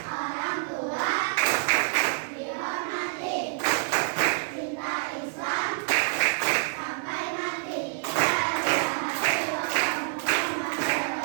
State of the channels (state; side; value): silent; left; 60 dB below the other